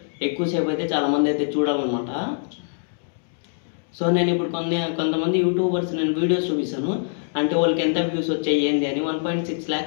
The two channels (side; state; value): right; silent; digital silence